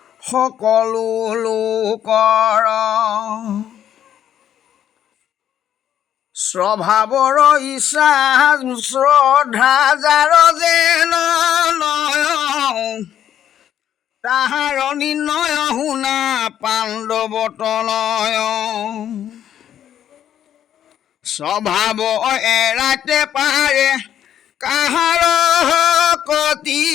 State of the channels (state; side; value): quieter; right; 10.3 dB